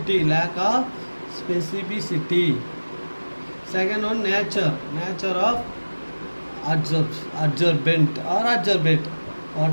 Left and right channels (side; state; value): both; inverted; correlation -1.00